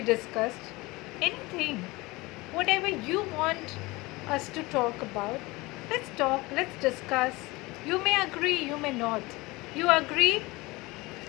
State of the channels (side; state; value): right; quieter; 22.3 dB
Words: discussed. Anything, whatever you want us to talk about, let's talk, let's discuss. You may agree, you may not. You agree,